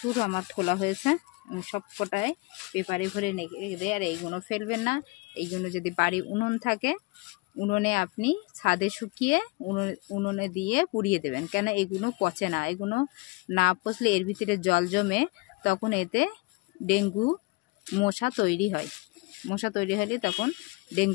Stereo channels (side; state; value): right; quieter; 25.6 dB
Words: আমার খোলা হয়েছে, সব কটায় পেপারে ভরে রেখে দেয়। আর এইগুলো ফেলবেন না, এইগুলো যদি বাড়ি উনুন থাকে উনুনে আপনি ছাদে শুকিয়ে উনুনে দিয়ে পুড়িয়ে দেবেন, কেন এগুলো পচে না। এগুলো না পচলে এর ভিতরে জল জমে, তখন এতে ডেঙ্গু মশা তৈরি হয়। মশা তৈরি হলে তখন